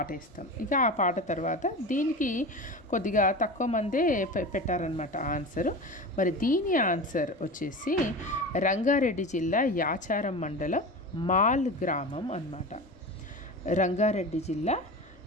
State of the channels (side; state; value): left; noise; rumble, 28 dB below the sound